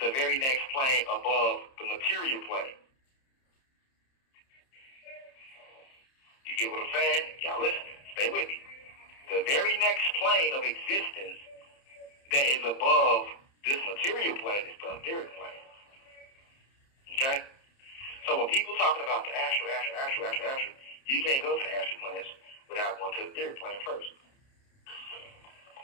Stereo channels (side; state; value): right; late; 30 ms